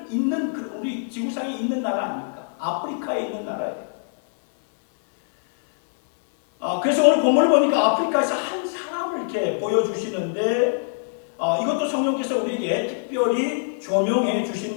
있는 우리 지구상에 있는 나라 아닙니까? 아프리카에 있는 나라예요. 그래서 오늘 본문을 보니까 아프리카에서 한 사람을 이렇게 보여주시는데 이것도 성령께서 우리에게 특별히 조명해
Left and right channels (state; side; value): silent; right; 63 dB below the other